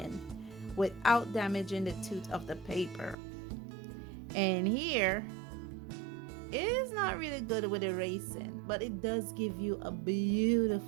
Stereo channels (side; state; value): left; drops out; at 3.2 s